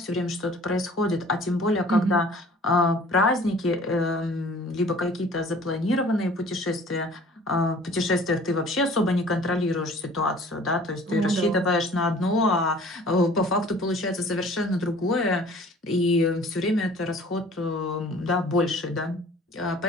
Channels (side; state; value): both; normal; correlation 0.49